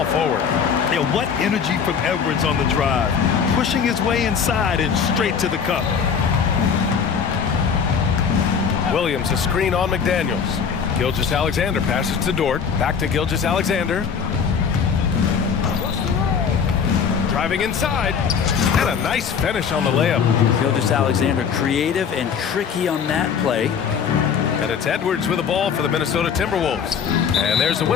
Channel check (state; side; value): quieter; right; 6.7 dB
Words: forward. Yeah, what energy from Edwards on the drive, pushing his way inside and straight to the cup. Williams a screen on McDaniels. Gilgeous-Alexander passes to Dort, back to Gilgeous-Alexander. Driving inside, and a nice finish on the layup. Gilgeous-Alexander creative and tricky on that play. And it's Edwards with the ball for the Minnesota Timberwolves. And there's a